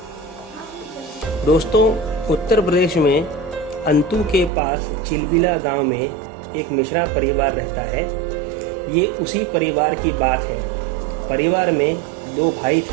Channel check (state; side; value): drops out; left; at 4.5 s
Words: दोस्तों, उत्तर प्रदेश में अंतु के पास चिलबिला गांव में एक मिश्रा परिवार रहता है। ये उसी परिवार की बात है। परिवार में 2 भाई